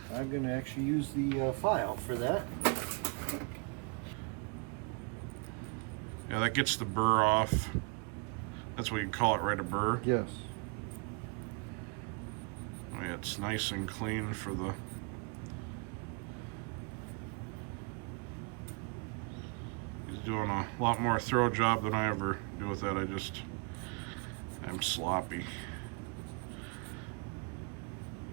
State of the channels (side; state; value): left; quieter; 33.2 dB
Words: I'm going to actually use the file for that. Yeah, that gets the burr off. That's what you call it, right? A burr? Yes. Oh, yeah, it's nice and clean for the... He's doing a lot more throw job than I ever do with that. I'm sloppy.